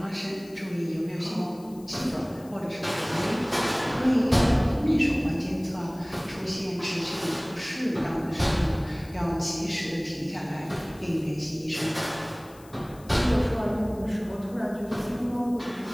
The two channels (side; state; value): left; noise; hiss, 24 dB below the sound